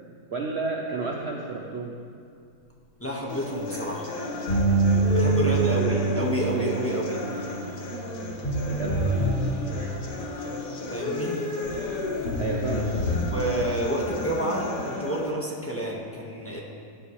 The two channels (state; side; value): normal; both; correlation -0.04